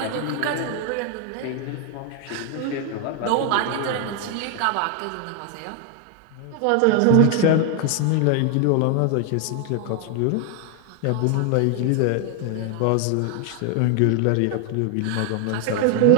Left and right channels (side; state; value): both; different; correlation 0.00